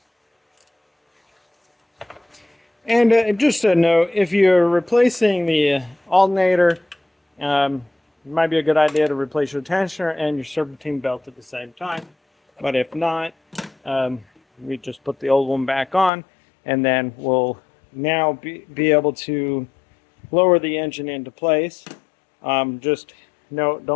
And just a note, if you're replacing the alternator, it might be a good idea to replace your tensioner and your serpentine belt at the same time. But if not, we just put the old one back on, and then we'll now be able to lower the engine into place. Just note,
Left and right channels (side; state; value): right; drops out; at 16.1 s